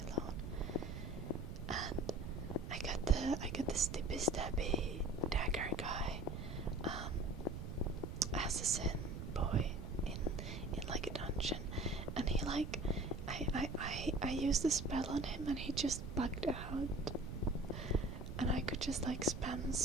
alone, and I got the stippy stabby dagger guy, assassin boy in like a dungeon, and he like I used a spell on him and he just bugged out, and I could just like spam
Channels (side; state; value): right; noise; rumble, 7 dB below the sound